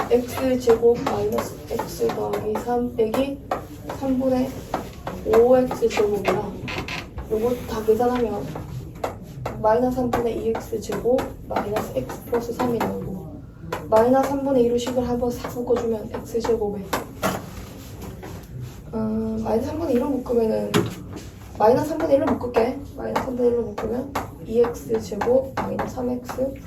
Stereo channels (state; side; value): identical; both; correlation 1.00